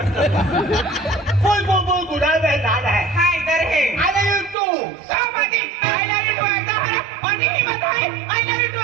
फूल फूल फूल खुदा भाई लाल है हाँ इधर है। आई लव यू टू सब आदि I love you to आता है। पानी की बात है। I love you to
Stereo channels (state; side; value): drops out; left; at 4.5 s